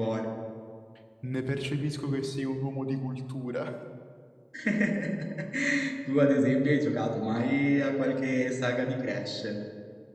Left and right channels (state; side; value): identical; both; correlation 1.00